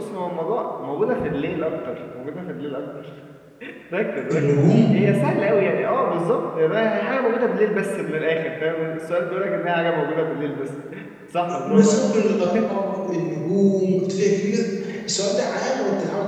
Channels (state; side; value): identical; both; correlation 1.00